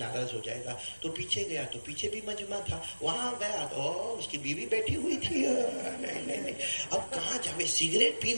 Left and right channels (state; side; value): inverted; both; correlation -1.00